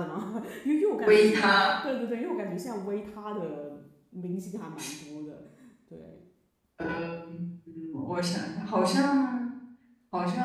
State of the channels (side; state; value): both; identical; correlation 1.00